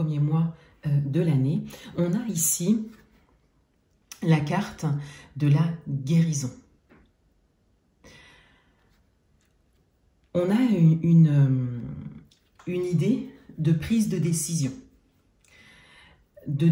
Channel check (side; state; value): both; identical; correlation 1.00